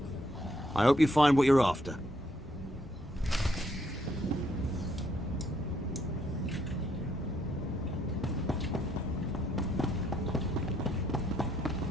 I hope you find what you're after.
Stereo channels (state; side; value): normal; both; correlation 0.72